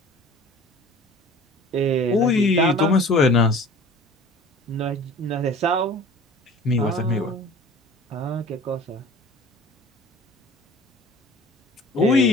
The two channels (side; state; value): both; normal; correlation 0.44